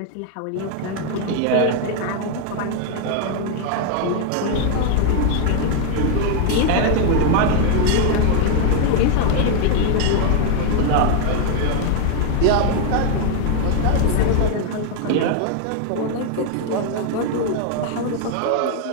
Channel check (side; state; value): both; different; correlation 0.01